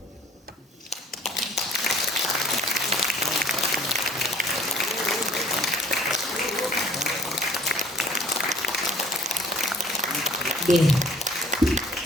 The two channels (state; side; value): normal; both; correlation 0.54